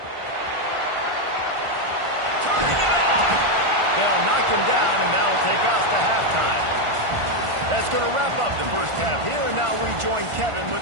Turning it on. They'll knock him down, and that'll take us to halftime. That's going to wrap up the first half here, and now we join Kevin with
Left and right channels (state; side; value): late; left; 1.5 ms